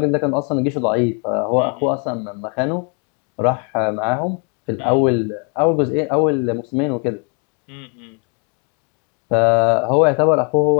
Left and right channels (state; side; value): quieter; right; 37.1 dB